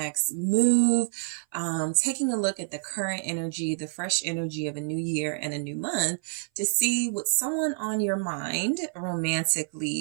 move. Taking a look at the current energy, the fresh energy of a new year and a new month to see what someone on your mind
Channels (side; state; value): left; silent; 57 dB below the other